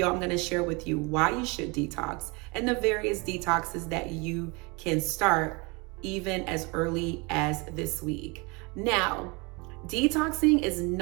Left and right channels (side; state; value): left; quieter; 28.3 dB